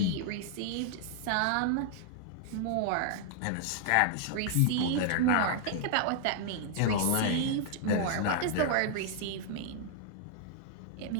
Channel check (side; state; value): both; different; correlation -0.01